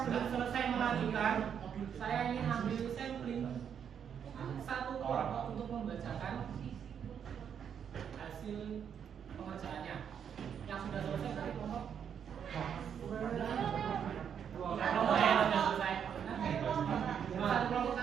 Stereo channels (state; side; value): quieter; left; 8.0 dB